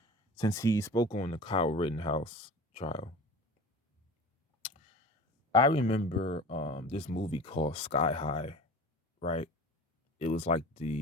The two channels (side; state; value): both; normal; correlation 0.37